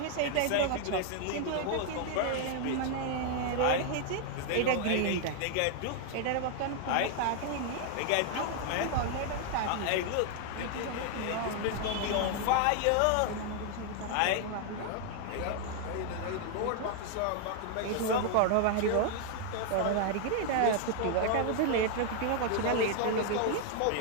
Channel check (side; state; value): both; different; correlation 0.00